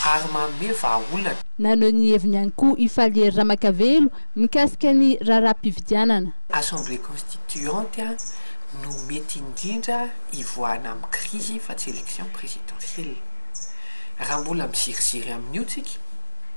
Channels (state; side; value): inverted; both; correlation -1.00